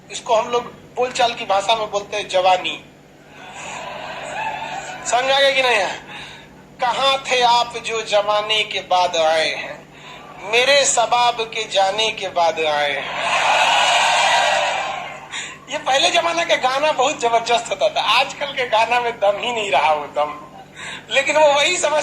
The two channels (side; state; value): both; identical; correlation 1.00